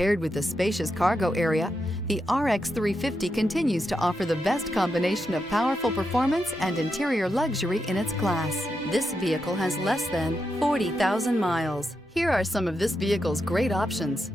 with a spacious cargo area, the RX 350 continues to offer the best combination of powerful performance and interior luxury in its class. This vehicle has less than 40,000 miles. Here are some of this vehicle's great options:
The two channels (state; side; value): normal; both; correlation 0.85